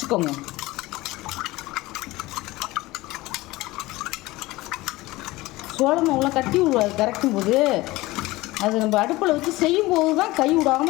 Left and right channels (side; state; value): right; quieter; 19.7 dB